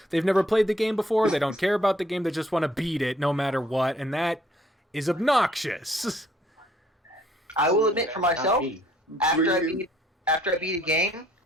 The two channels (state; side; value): normal; both; correlation 0.63